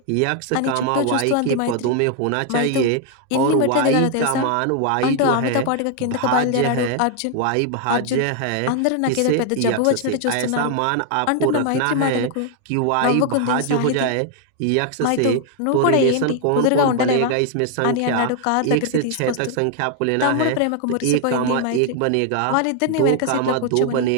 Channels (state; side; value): different; both; correlation 0.00